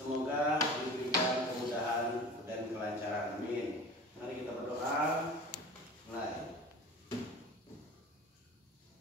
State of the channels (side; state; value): both; normal; correlation 0.38